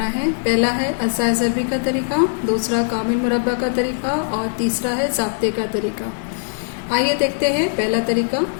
है। पहला है अज़ा ज़रबी का तरीका, दूसरा कामिल मुरब्बा का तरीका और तीसरा है ज़ाब्ते का तरीका। आइए देखते हैं पहला तरीका,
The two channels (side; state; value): right; silent; digital silence